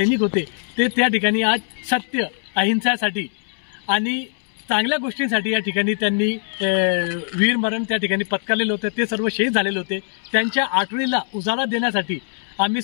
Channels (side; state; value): right; silent; 65 dB below the other